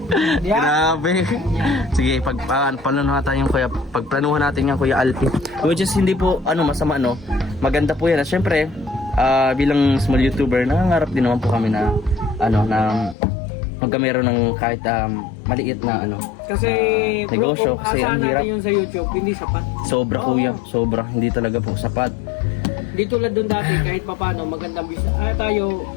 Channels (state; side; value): drops out; right; at 13.2 s